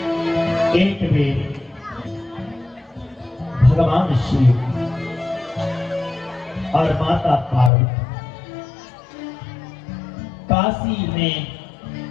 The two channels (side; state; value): right; drops out; at 7.7 s